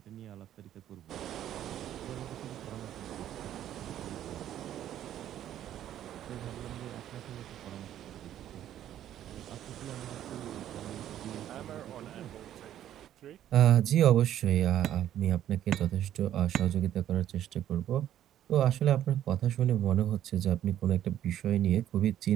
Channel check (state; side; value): quieter; left; 11.5 dB